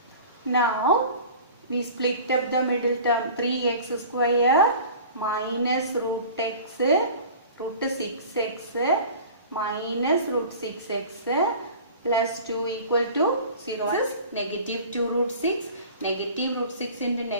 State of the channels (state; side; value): inverted; both; correlation -0.41